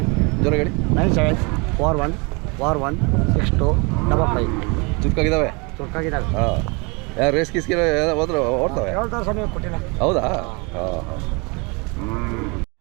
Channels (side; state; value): left; quieter; 29.7 dB